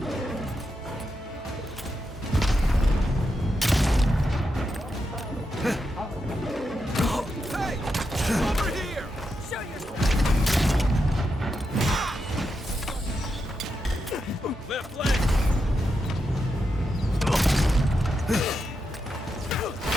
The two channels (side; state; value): both; normal; correlation 0.86